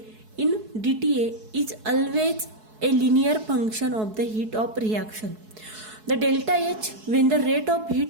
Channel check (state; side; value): late; left; 4.7 ms